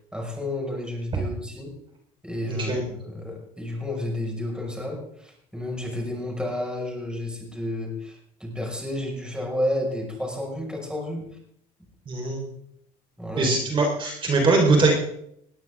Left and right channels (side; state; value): both; normal; correlation 0.58